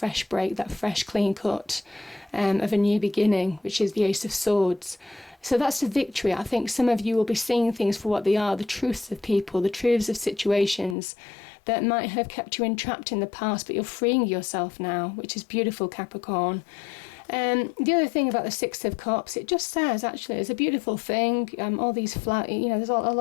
break, that fresh clean cut of a new beginning, which is the Ace of Swords. So that's the victory. I think some of you will be seeing things for what they are, the truths of people, the truths of situations that might have kept you entrapped in the past, but you're freeing yourself now, which is beautiful, Capricorn. The other thing about the Six of Cups, it just says, actually, it's a beautiful thing. All these flowers, there's a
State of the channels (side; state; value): right; drops out; at 11.0 s